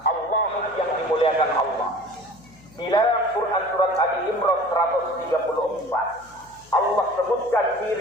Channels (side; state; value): left; noise; hum, 26 dB below the sound